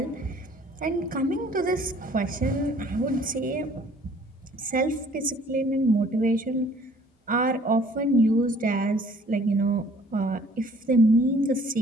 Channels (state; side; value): normal; both; correlation 0.56